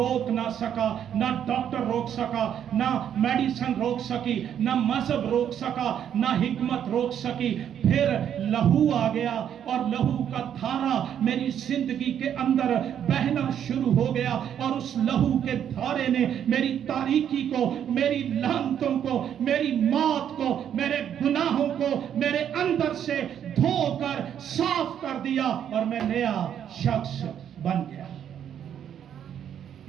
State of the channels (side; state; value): left; quieter; 9.3 dB